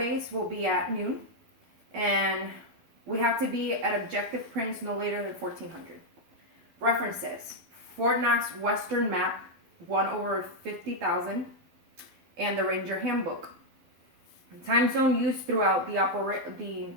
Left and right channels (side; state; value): left; late; 12 ms